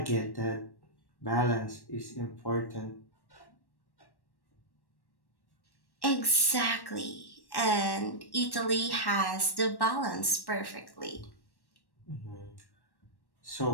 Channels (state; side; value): late; right; 1.1 ms